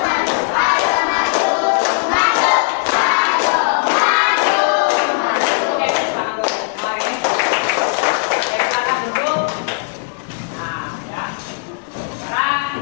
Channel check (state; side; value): silent; right; digital silence